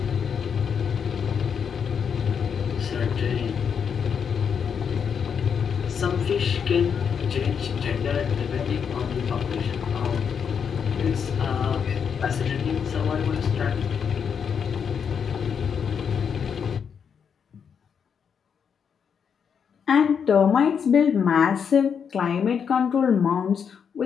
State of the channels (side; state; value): right; quieter; 7.0 dB